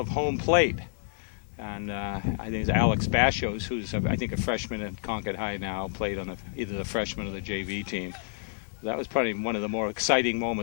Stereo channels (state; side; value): silent; right; digital silence